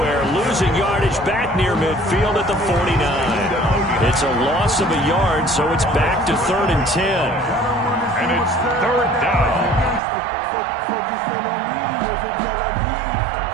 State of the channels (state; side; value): drops out; left; at 10.0 s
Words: Losing yardage back near midfield at the 49. It's a loss of a yard, so it's back to 3rd and 10. And it's 3rd down.